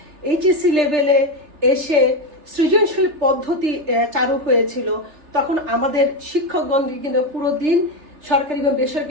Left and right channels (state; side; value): late; left; 3.3 ms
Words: লেভেলে এসে সৃজনশীল পদ্ধতি চালু হয়েছিল, তখন আমাদের শিক্ষকগণ কিন্তু পুরো দিন সরকারি এবং